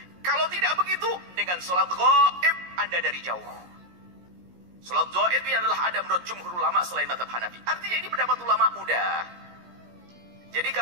Kalau tidak begitu, dengan solat ghaib, Anda dari jauh. Solat ghaib ini adalah ada menurut jumhur ulama selain madhab Hanafi. Artinya ini pendapat ulama udah. Jadi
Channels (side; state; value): left; late; 17 ms